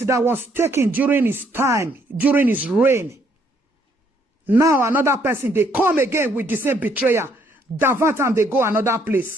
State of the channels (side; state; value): both; normal; correlation 0.68